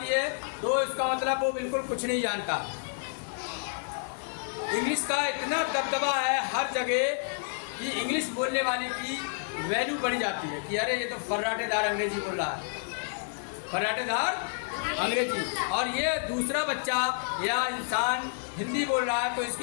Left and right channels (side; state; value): right; silent; digital silence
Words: है तो इसका मतलब वो बिल्कुल कुछ नहीं जानता। इंग्लिश का इतना दबदबा है हर जगह कि इंग्लिश बोलने वाले की वैल्यू बढ़ जाती है कि अरे ये तो फर्राटेदार अंग्रेजी बोल रहा है, फर्राटेदार अंग्रेजी, और ये दूसरा बच्चा या इंसान हिंदी बोल रहा है तो